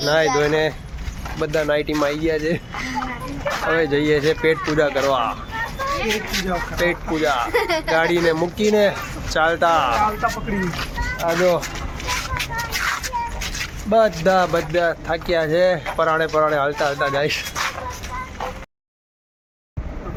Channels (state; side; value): identical; both; correlation 1.00